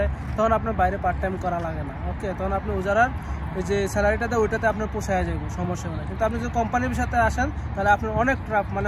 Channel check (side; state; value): both; identical; correlation 1.00